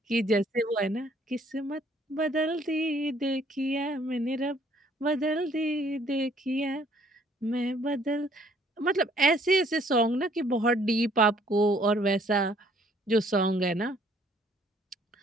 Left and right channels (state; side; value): normal; both; correlation 0.62